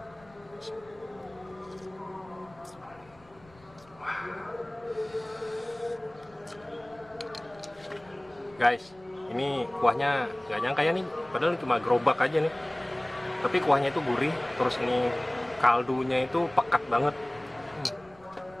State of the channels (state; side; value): noise; left; rumble, 27 dB below the sound